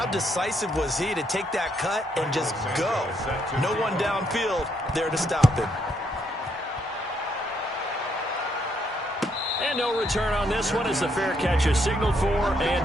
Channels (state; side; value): normal; both; correlation 0.74